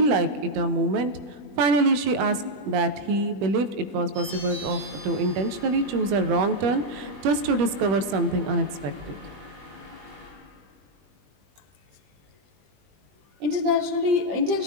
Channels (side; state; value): left; late; 20 ms